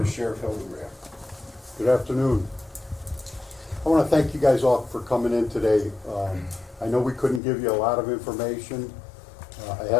to Sheriff Hodenbrand. Good afternoon. I want to thank you guys all for coming in today. I know we couldn't give you a lot of information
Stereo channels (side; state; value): right; drops out; at 7.4 s